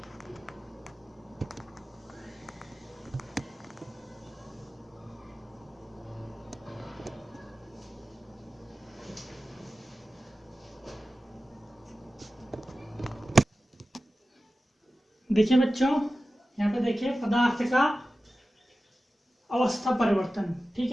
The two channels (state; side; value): normal; both; correlation 0.95